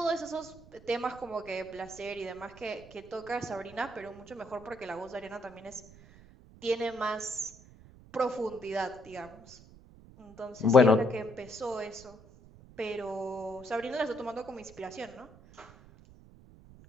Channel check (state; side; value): noise; right; rumble, 21 dB below the sound